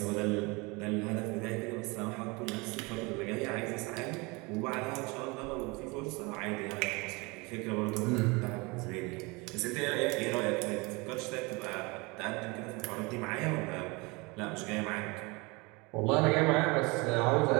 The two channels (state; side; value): quieter; left; 26.5 dB